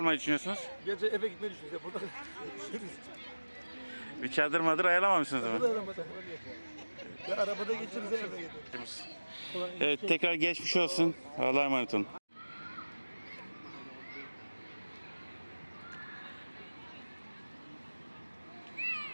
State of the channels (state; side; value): inverted; both; correlation -1.00